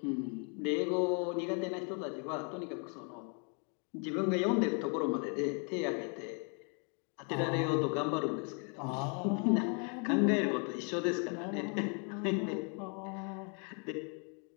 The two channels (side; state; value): right; quieter; 38.5 dB